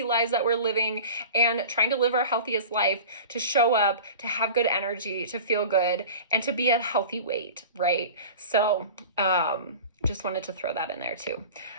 lives that we're living and trying to live our healthiest life, to show up, to have good energy, to feel good, and to be at a healthy weight, right? So, just wanted to throw that in there too.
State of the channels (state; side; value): inverted; both; correlation -0.37